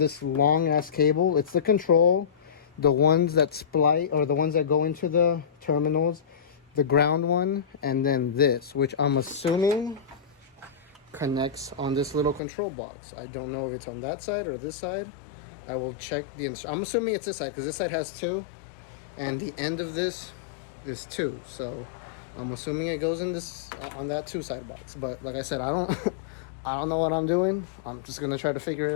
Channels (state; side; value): drops out; right; at 12.4 s